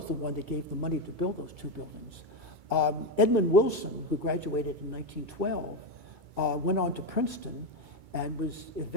the one that gave the money to build those two buildings. Edmund Wilson, who graduated in 1912, went on to Princeton and was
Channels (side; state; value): left; late; 2.2 ms